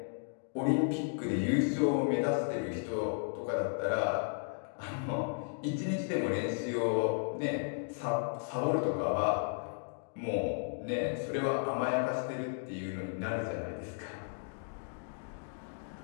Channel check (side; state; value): right; silent; digital silence